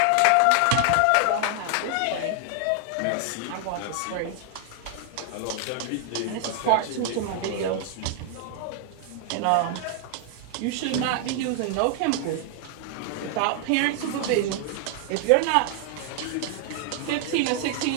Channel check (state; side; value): different; both; correlation 0.00